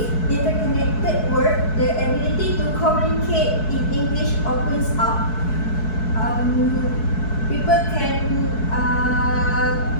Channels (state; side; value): late; right; 4.6 ms